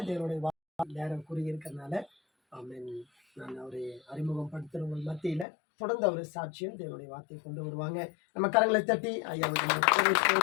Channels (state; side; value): drops out; right; at 5.5 s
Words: தேவனுடைய நேரம் கூறியிருக்கிறதுனால ஆமென். நான் அவரை அறிமுகப்படுத்துறவங்க மத்தியில தொடர்ந்து அவர் சாட்சியம் தேவனுடைய வார்த்தையை கொண்டு வருவாங்க. நம்ம கரங்களை தட்டி ஐயா